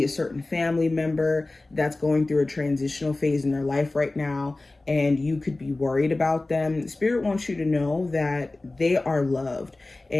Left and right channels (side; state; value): right; quieter; 3.0 dB